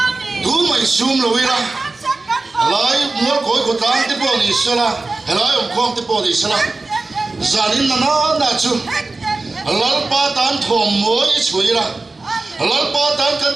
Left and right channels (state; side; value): quieter; left; 3.4 dB